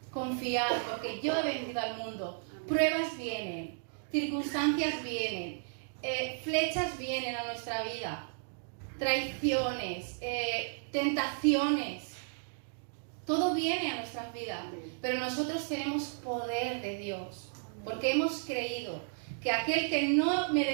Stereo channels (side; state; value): left; silent; digital silence